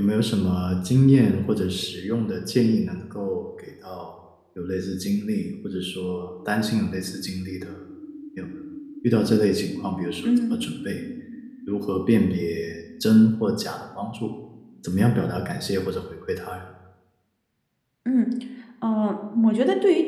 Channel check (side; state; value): both; identical; correlation 1.00